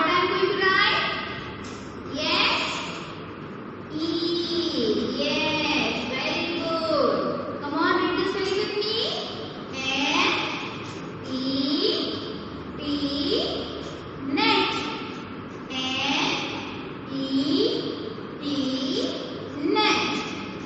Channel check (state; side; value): identical; both; correlation 1.00